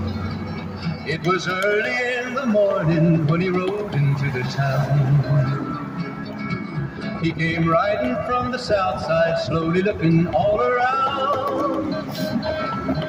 It was early in the morning when he rode into the town. He came riding from the south side, slowly looking all around.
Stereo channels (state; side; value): identical; both; correlation 1.00